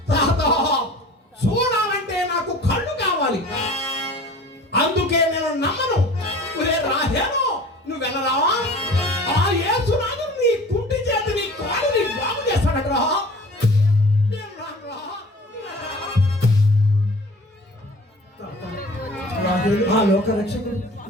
తాత, చూడాలంటే నాకు కళ్ళు కావాలి, అందుకే నేను నమ్మను. ఒరే రాహేలో, నువ్వెనరా ఆ యేసునాడు నీ కుంటి చేతి నీ కాలుని బాగు చేస్తాడటరా. నేను రానురా. ఆ లోక రక్షకుడు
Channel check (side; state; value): both; normal; correlation 0.44